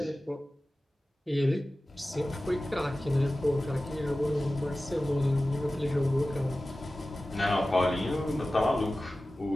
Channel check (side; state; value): both; normal; correlation 0.96